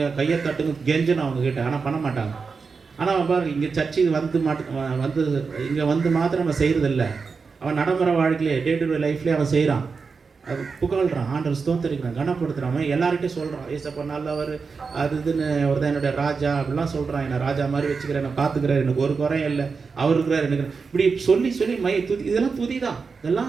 கையை தட்டுங்க, கெஞ்சணும் அவங்கக்கிட்ட. ஆனால் பண்ண மாட்டாங்க. ஆனால் அவன் பாரு, இங்கே சர்ச்சுக்கு இங்கே வந்து மாத்திரம் அவன் செய்கிறதில்ல. அவன் நடைமுறை வாழ்க்கையிலே டே டு டே லைஃப்லேயே அவன் செய்கிறான். அது புகழ்கிறான், ஆண்டவர் ஸ்தோத்தரிக்கிறான், கனப்படுத்துகிறான். அவன் எல்லார்கிட்டையும் சொல்கிறான், ஏசப்பா நல்லவர், அது இதுன்னு அவர் தான் என்னுடைய ராஜா அப்படிலாம் சொல்கிறான். என்னை ராஜா மாதிரி வச்சுக்கிறேன், என்னை பார்த்துக்கிறார், எனக்கு ஒரு குறையும் இல்லை, அவர் இருக்கிறார் எனக்கு. இப்படி சொல்லி துதி, இதெல்லாம் துதி தான்,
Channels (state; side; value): quieter; left; 5.0 dB